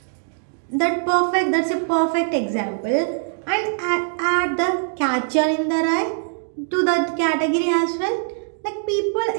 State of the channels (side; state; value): left; silent; digital silence